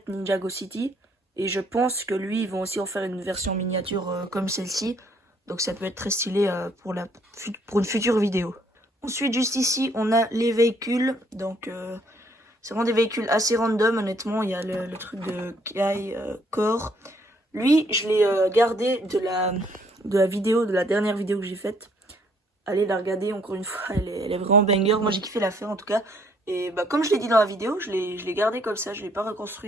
Ninjago City. Et je pense que lui, ils vont aussi en faire une version miniature comme celle-ci. Donc ça peut être très stylé pour une future vidéo. Ensuite, juste ici, on a les véhicules. Donc c'est vraiment des véhicules assez random, honnêtement. Il y a le truc de Kai Core. Lui, je l'ai gardé de la vidéo, de la dernière vidéo que j'ai faite. Allez la regarder encore une fois, elle est vraiment banger. Moi j'ai kiffé la faire en tout cas. Et bah, comme je l'ai dit dans la vidéo, je l'ai gardé comme ça, je ne l'ai pas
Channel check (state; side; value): normal; both; correlation 0.66